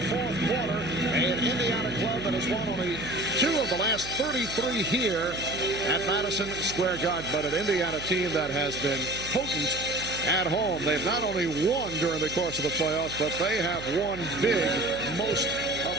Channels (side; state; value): right; noise; hum, 12 dB below the sound